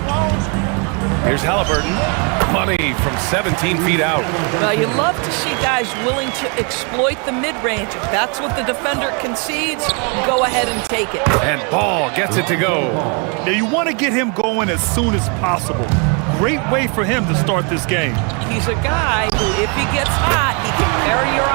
Here's Halliburton. Money from 17 feet out. Well, you love to see guys willing to exploit the mid-range. If that's what the defender concedes, go ahead and take it. And Ball gets it to go. Now, you want to get him going as soon as possible. Great way for him to start this game. He's a guy who, if he gets hot, he can carry your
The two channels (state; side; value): quieter; left; 35.3 dB